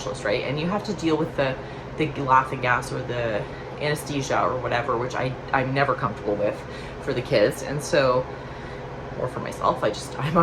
right? And you have to deal with the laughing gas or the anesthesia or whatever, which I'm never comfortable with for the kids. And so, or for myself, I'm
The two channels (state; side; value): identical; both; correlation 1.00